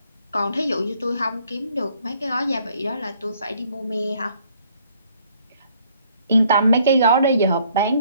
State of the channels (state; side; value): inverted; both; correlation -0.64